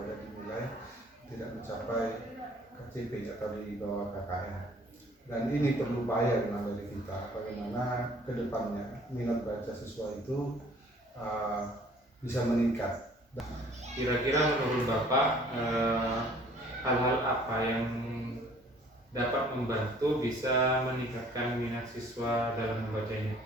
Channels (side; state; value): both; normal; correlation 0.55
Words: di nilai tidak mencapai KCP atau di bawah KKM. Dan ini perlu upaya dari kita bagaimana ke depannya minat baca siswa itu bisa meningkat. Kira-kira menurut Bapak hal-hal apa yang dapat membantu bisa meningkatkan minat siswa dalam membacanya?